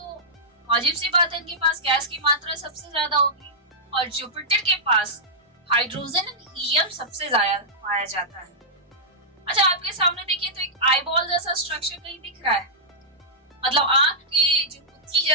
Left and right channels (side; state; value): both; normal; correlation -0.11